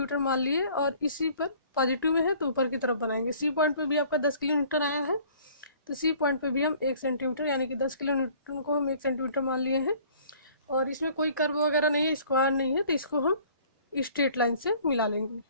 मान लिए और इसी पर पॉजिटिव में है तो ऊपर की तरफ बनाएंगे। सी पॉइंट पर भी आपका 10 किलोमीटर आया है, तो सी पॉइंट पर भी हम 1 सेंटीमीटर, यानी कि 10 किलोमीटर को हम 1 सेंटीमीटर मान लिए हैं। और इसमें कोई कर्व वगैरह नहीं है, स्क्वायर नहीं है, तो इसको हम स्ट्रेट लाइन से मिला लेंगे।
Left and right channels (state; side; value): inverted; both; correlation -0.53